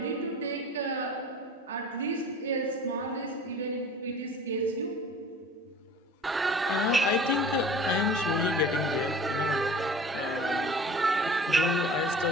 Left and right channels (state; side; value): normal; both; correlation 0.43